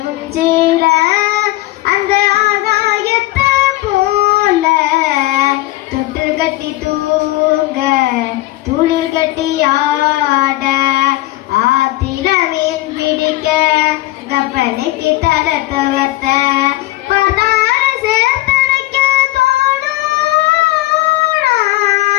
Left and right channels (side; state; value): right; quieter; 17.7 dB